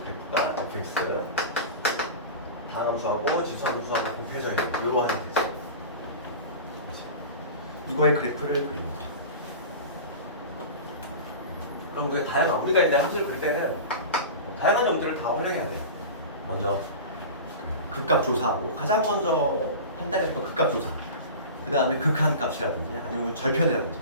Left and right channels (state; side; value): inverted; both; correlation -0.31